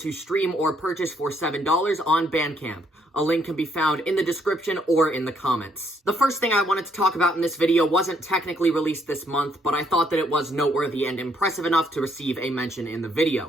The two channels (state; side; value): normal; both; correlation 0.70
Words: stream or purchase for $7 on Bandcamp. A link can be found in the description or in the comments. The first thing I wanted to talk about in this video wasn't technically released this month, but I thought that it was noteworthy and impressive enough to receive a mention in the